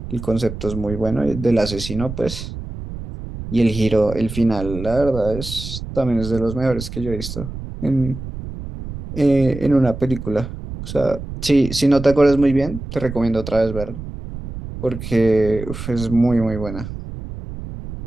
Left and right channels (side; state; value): right; noise; rumble, 9 dB below the sound